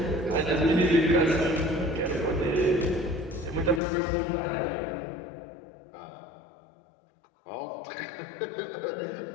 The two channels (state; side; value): drops out; right; at 3.8 s